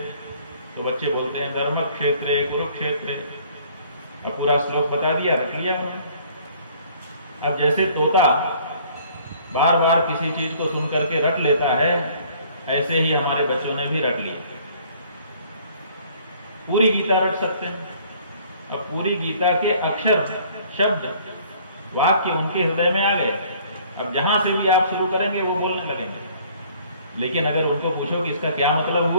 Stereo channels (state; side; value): inverted; both; correlation -0.56